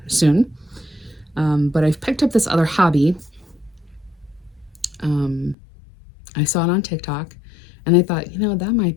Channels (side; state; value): right; drops out; at 5.6 s